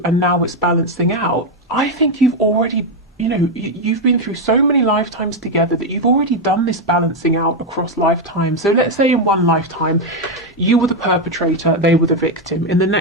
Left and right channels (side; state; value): both; normal; correlation 0.05